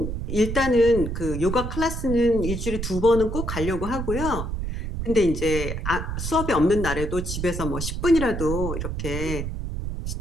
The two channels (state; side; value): noise; right; rumble, 4 dB below the sound